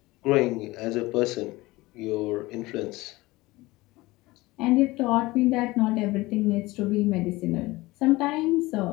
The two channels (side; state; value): right; quieter; 20.4 dB